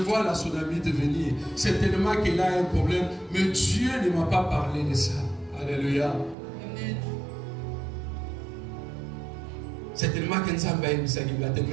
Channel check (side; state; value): left; drops out; at 6.4 s